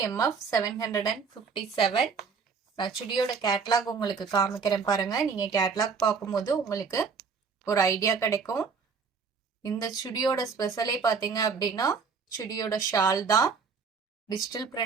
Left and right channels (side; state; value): left; quieter; 5.4 dB